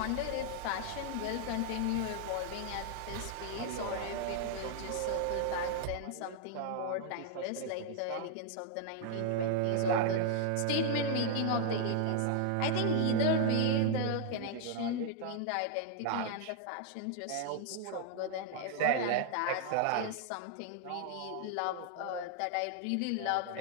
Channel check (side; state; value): both; different; correlation 0.00